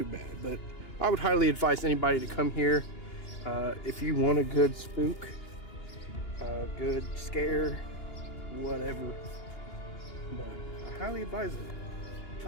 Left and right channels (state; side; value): late; right; 2.9 ms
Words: but I would highly advise anybody to come here if you want a good spook, a good scare, whatever. But I highly advise it.